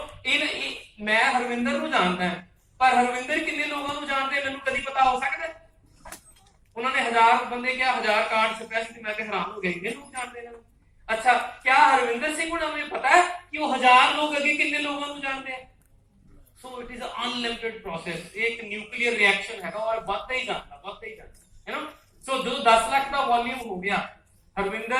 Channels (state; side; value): identical; both; correlation 1.00